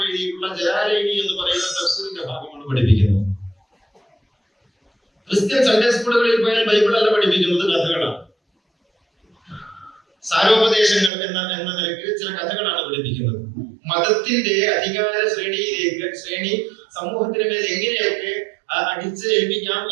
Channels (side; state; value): left; drops out; at 11.1 s